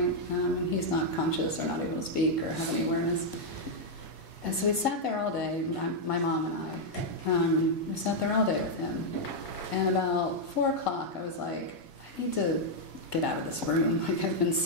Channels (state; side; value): late; right; 1.5 ms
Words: and he's not conscious or not able to speak or have any awareness. And so we sat there all day, my mom and I, we sat there all day with him, and about 4 o'clock I was like, I need to get out of this room. Like, I've been